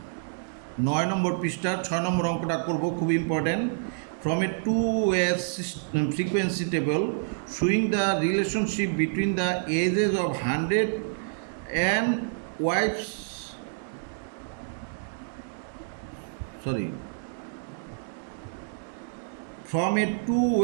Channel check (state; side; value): silent; left; 59 dB below the other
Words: 9 নম্বর পৃষ্ঠার 6 নম্বর অঙ্কটা করব, খুব important. From a 2A frequency table showing the relationship between the ages of 100 and wives, from a